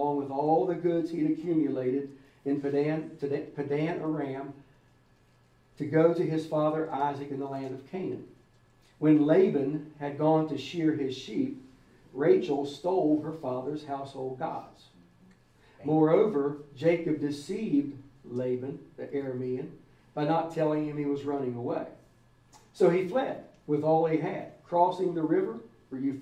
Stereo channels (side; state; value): both; identical; correlation 1.00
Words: with all the goods he'd accumulated in Padan Aram, to go to his father Isaac in the land of Canaan. When Laban had gone to shear his sheep, Rachel stole her father's household gods. Moreover, Jacob deceived Laban, the Aramean, by not telling him he was running away. So he fled with all he had. Crossing the river, for